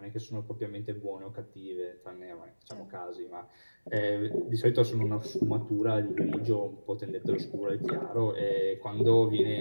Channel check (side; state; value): both; inverted; correlation -1.00